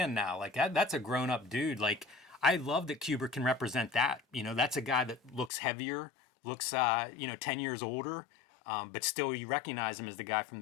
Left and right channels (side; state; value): right; drops out; at 5.5 s